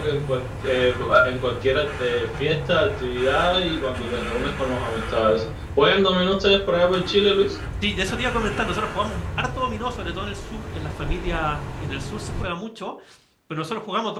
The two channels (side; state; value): both; identical; correlation 1.00